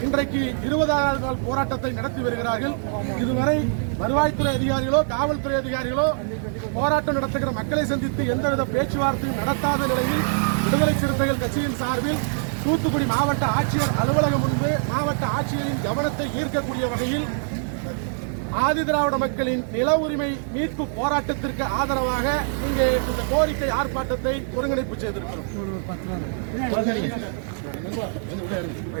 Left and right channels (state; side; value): silent; left; 63 dB below the other